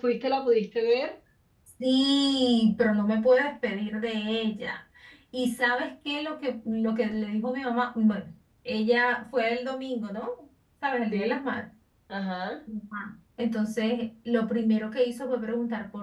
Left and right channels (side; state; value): both; identical; correlation 1.00